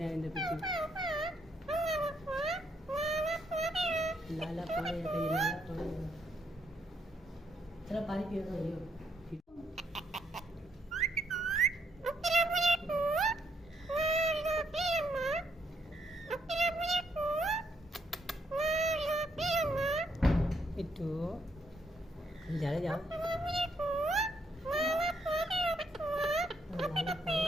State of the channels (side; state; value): both; normal; correlation 0.74